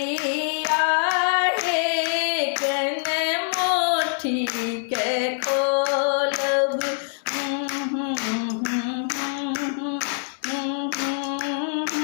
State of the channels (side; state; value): right; silent; digital silence